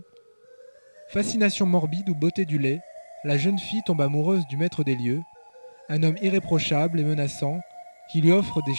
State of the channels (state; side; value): inverted; both; correlation -1.00